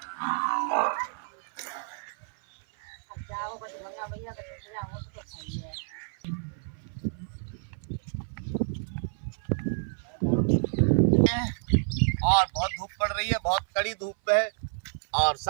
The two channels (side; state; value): left; silent; 56 dB below the other